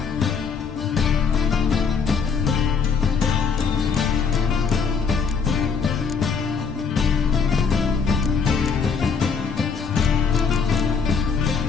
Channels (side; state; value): right; quieter; 5.8 dB